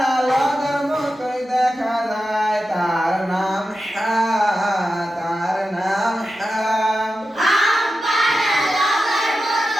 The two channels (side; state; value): both; normal; correlation 0.91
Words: লগার মতোই দেখা যায় তার নাম হা তার নাম হা আম পাড়া লগার